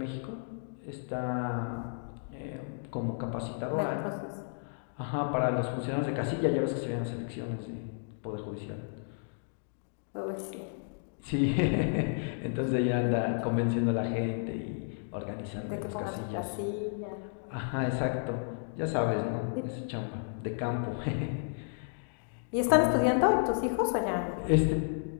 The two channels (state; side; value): silent; right; digital silence